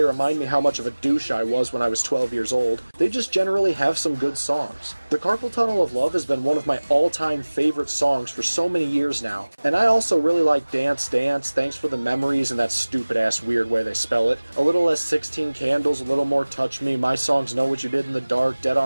remind me how much of a douche I was when I was 12 years old, they just generally have some good songs. The Carpal Tunnel of Love has been one of my all-time favorite songs for so many years now. And I also really like Dance Dance, Thanks for the Memories, and that stupid-ass weird way they spell it. A little less 16 Candles, a little more Touch Me, My Songs Know What You Did in the Dark, Dead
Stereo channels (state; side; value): inverted; both; correlation -1.00